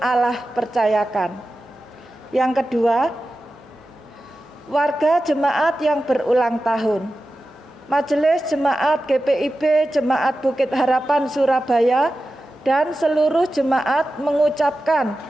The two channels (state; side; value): normal; both; correlation 0.93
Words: Allah percayakan. Yang kedua, warga jemaat yang berulang tahun. Majelis Jemaat GPIB Jemaat Bukit Harapan Surabaya dan seluruh jemaat mengucapkan